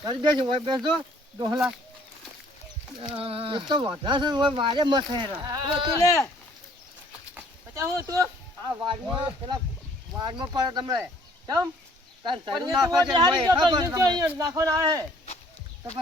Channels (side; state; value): both; normal; correlation 0.59